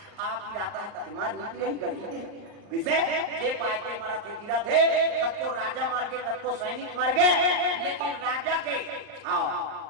आप गिराता है कते मार नीति रही गड़ी किसे जे पाए के मारा थे गिरा थे कत को राजा मार के कत को सैनिक मार गए लेकिन राजा के हां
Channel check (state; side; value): late; left; 39 ms